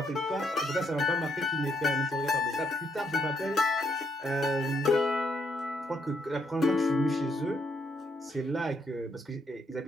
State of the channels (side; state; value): both; normal; correlation 0.74